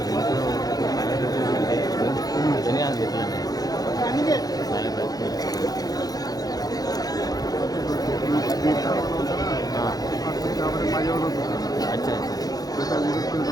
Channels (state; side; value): late; right; 0.18 ms